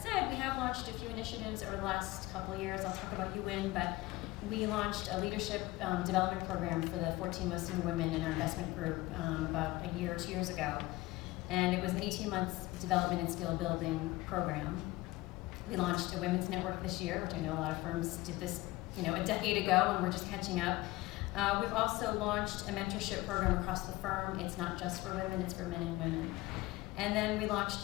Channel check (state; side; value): quieter; right; 19.3 dB